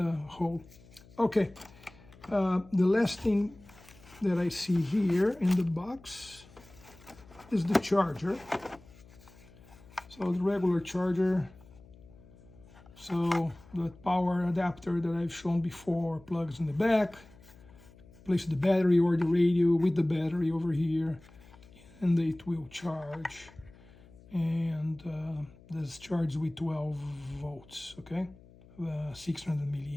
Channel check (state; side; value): noise; left; hum, 23 dB below the sound